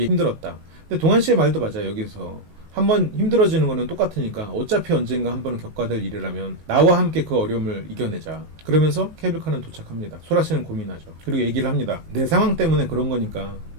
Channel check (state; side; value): late; left; 19 ms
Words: 힘들었다. 근데 동환 씨의 말도 맞아요. 여기서 한번 힘들어지는 거는 똑같으니까 어차피 언젠가 한 번은 겪어야 될 일이라면 나와 함께 그 어려움을 이겨내자. 그러면서 케이블카는 도착합니다. 소라 씨는 고민하죠. 그리고 얘기를 합니다. 내 상황 때문에 그런 거니까